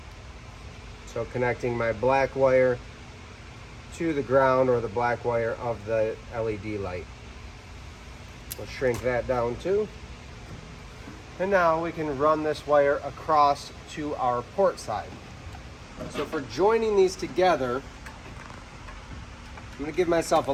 So connecting my black wire to the ground, or the black wire of the LED light. We'll shrink that down too. And now we can run this wire across to our port side. So for joining these together, I'm going to give myself a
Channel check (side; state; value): both; identical; correlation 1.00